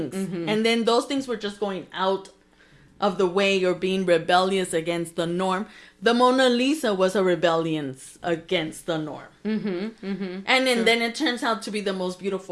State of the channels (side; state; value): both; identical; correlation 1.00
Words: And then those things were just going out of the way or being rebellious against the norm. The Mona Lisa was a rebellion against the norm. And then it turns out to be the most